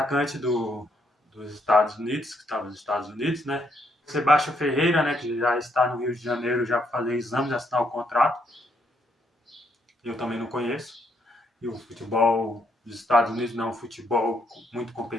dos Estados Unidos, que estava nos Estados Unidos, né? Sebastião Ferreira, né, que já está no Rio de Janeiro já para fazer exames, assinar o contrato. Eu também não conheço. E o futebol dos Estados Unidos não é um futebol muito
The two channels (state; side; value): normal; both; correlation 0.74